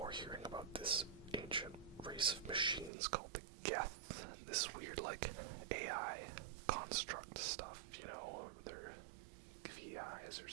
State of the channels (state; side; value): drops out; left; at 2.9 s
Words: hearing about this ancient race of machines called the Geth, this weird, like, AI construct stuff, you know, or they're VIs or